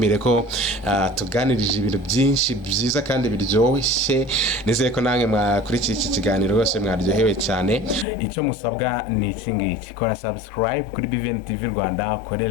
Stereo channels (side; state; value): right; drops out; at 8.1 s